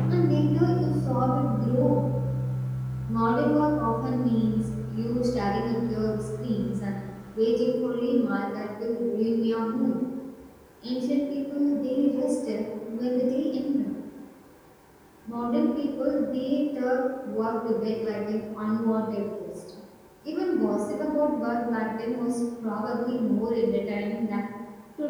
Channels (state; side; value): identical; both; correlation 1.00